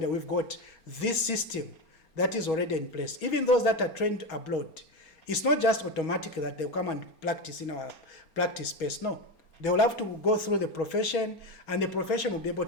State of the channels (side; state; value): right; late; 4.3 ms